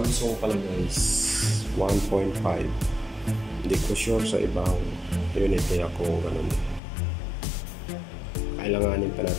pala guys 1.5. Hindi ko sure sa ibang unit nila kung ganun. Kailanganin pa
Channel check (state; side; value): drops out; right; at 6.8 s